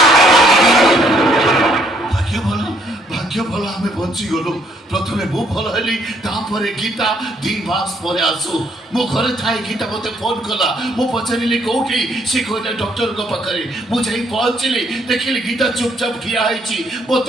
भाग्य भल आमे बंची गलो प्रथमे मु भल हली तापरे गीता 2 मास परे आसु मो घरे थाई गीता मते फोन कला मु पचारिली कोठी से कोटा डॉक्टर को पाखरे मु जाई पहुंचली देखिली गीता चुपचाप खिया आइची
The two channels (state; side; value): normal; both; correlation 0.68